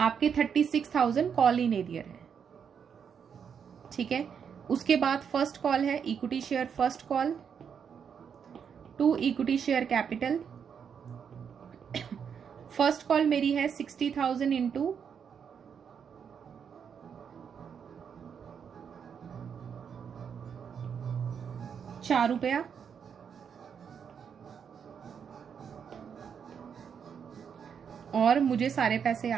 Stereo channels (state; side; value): quieter; left; 7.2 dB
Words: 36,000 कॉल इन एरियर है। ठीक है, उसके बाद फर्स्ट कॉल है equity share first call to equity share capital. First call मेरी है 60,000 इंटू 4 रुपया, और मुझे सारे पैसे